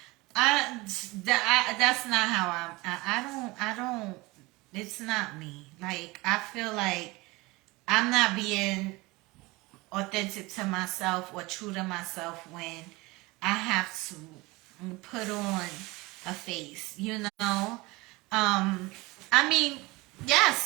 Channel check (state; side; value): quieter; left; 22.7 dB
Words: that's not how I don't, it's not me. Like, I feel like I'm not being authentic to myself or true to myself when I have to put on a face, I mean, yes,